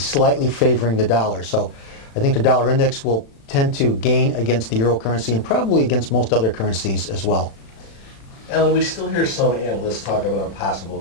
favoring the dollar. So I think the dollar index will tend to gain against the euro currency and probably against most other currencies as well. Alan, we still hear some analysts talk about a possible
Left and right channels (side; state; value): right; late; 36 ms